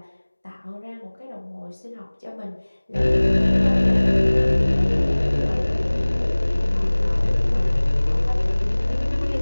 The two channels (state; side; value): inverted; both; correlation -1.00